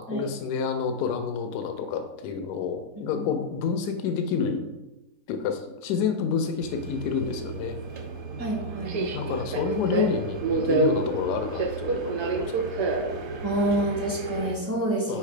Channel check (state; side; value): late; right; 3.8 ms